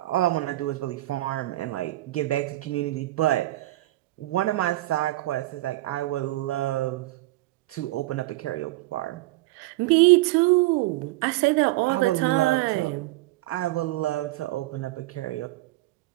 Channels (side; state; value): left; quieter; 18.1 dB